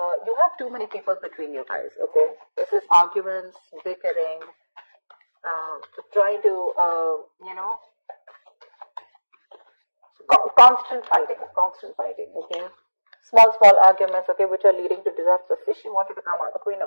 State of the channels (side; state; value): both; inverted; correlation -1.00